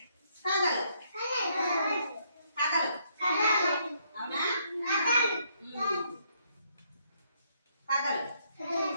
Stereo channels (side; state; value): both; inverted; correlation -0.71